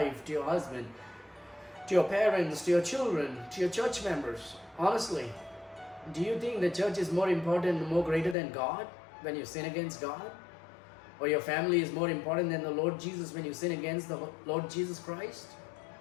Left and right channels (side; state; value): right; drops out; at 8.3 s